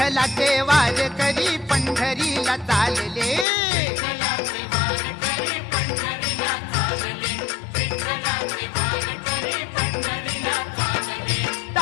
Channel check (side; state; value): right; drops out; at 3.5 s